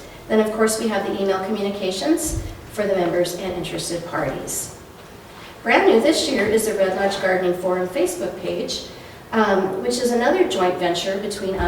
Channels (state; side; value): identical; both; correlation 1.00